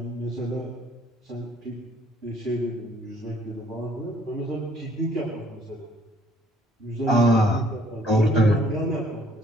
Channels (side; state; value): both; normal; correlation 0.61